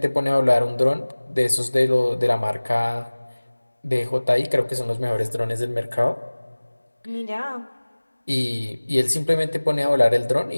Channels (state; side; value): inverted; both; correlation -1.00